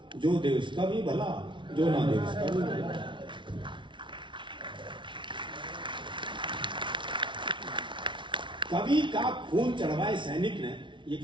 जो दे उसका भी भला, जो ना दे उसका भी भला। कवि का खून चढ़वाए सैनिक ने, ये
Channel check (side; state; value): left; late; 0.24 ms